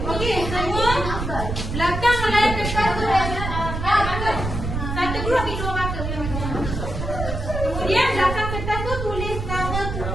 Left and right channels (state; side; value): noise; right; rumble, 4 dB below the sound